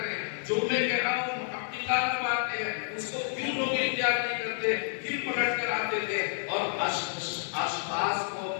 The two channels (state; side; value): silent; right; digital silence